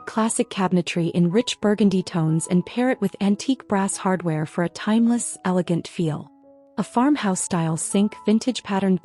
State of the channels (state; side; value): identical; both; correlation 1.00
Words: classic cabinetry in rich burgundy tones and pair it with antique brass hardware for a timeless, elegant feel. A farmhouse-style sink, vintage patterned